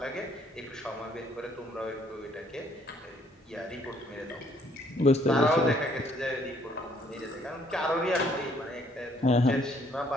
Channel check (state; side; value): normal; both; correlation 0.65